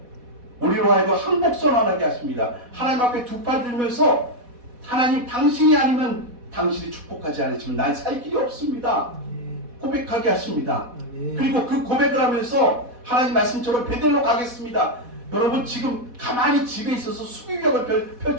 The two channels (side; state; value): left; late; 4.1 ms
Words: 우리로 하여금 항복선언하게 하십니다. 하나님 앞에 두 팔 들면서 하나님 당신이 아니면 당신이 축복하지 않으시면 난 살 길이 없습니다. 고백하게 하십니다. 그리고 그 고백을 하면서 하나님 말씀처럼 베델로 가겠습니다. 여러분 지금 가만히 집에 있어서 수비벽을